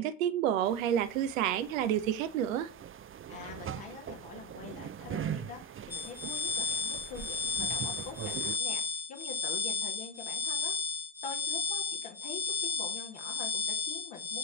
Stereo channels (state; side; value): normal; both; correlation 0.14